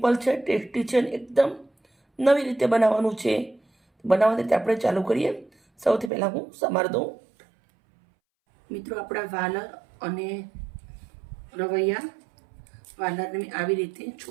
છે, ટેસ્ટી છે, એકદમ નવી રીતે બનાવવાનું છે. બનાવવાની રીતે આપણે ચાલુ કરીએ. સૌથી પહેલાં હું સમાર દઉં. મિત્રો, આપણા વાલર અને રવૈયા વાલરને મેં આવી રીતે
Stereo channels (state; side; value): drops out; left; at 6.1 s